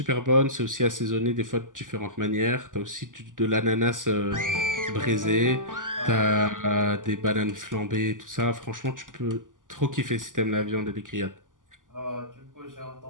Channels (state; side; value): late; left; 0.88 ms